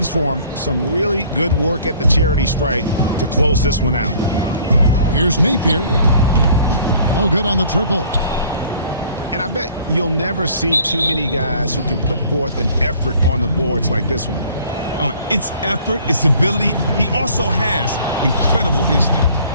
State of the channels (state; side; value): inverted; both; correlation -0.54